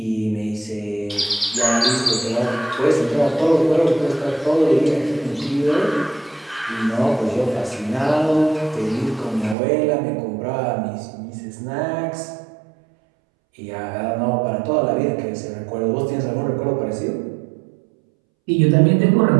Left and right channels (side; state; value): left; drops out; at 9.6 s